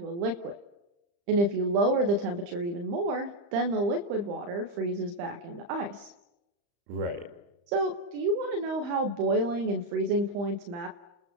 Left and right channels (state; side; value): late; left; 35 ms